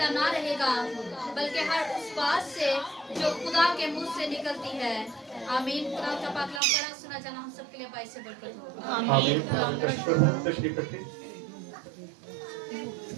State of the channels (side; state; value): left; drops out; at 6.6 s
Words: ना रहेगा, बल्कि हर उस बात से जो खुदा के मुंह से निकलती है। आमीन। खुदा का पाक कलाम पढ़ा सुना जाना हम सबके लिए बाइस से बरकत हो। आमीन। तशरीफ रखिए।